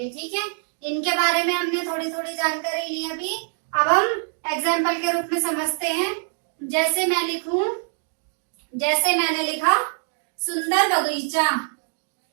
ठीक है। इनके बारे में हमने थोड़ी थोड़ी जानकारी ली अभी। अब हम एग्जाम्पल के रूप में समझते हैं। जैसे मैंने लिखा सुंदर बगीचा,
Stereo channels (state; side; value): silent; left; digital silence